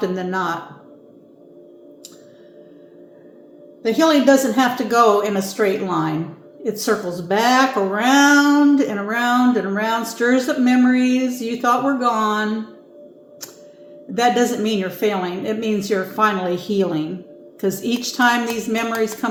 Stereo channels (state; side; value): identical; both; correlation 1.00